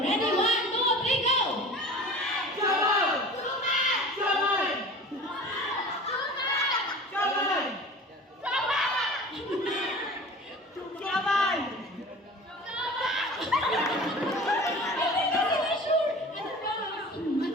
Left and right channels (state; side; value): normal; both; correlation 0.39